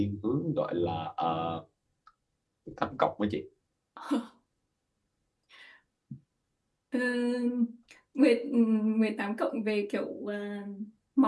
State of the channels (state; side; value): identical; both; correlation 1.00